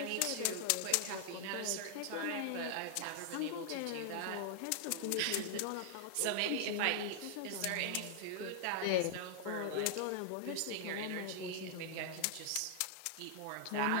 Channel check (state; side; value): different; both; correlation 0.00